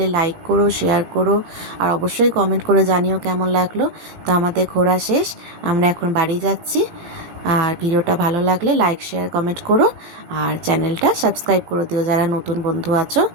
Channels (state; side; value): late; left; 18 ms